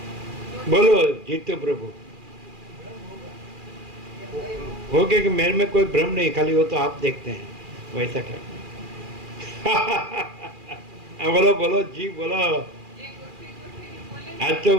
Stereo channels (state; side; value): late; left; 2.4 ms